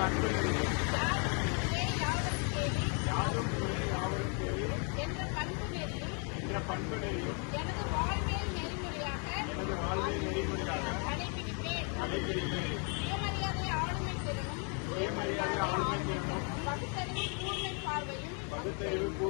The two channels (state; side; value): quieter; right; 38.3 dB